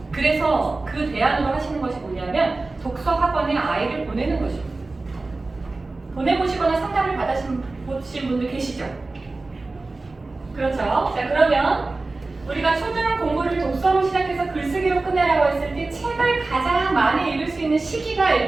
그래서 그 대안으로 하시는 것이 뭐냐면 독서 학원에 아이를 보내는 것입니다. 보내보시거나 상담을 받으신 분들 계시죠? 그렇죠? 자, 그러면 우리가 초등 공부를 독서로 시작해서 글쓰기로 끝내라고 했을 때 책을 가장 많이 읽을 수 있는 시기가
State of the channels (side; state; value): left; quieter; 3.4 dB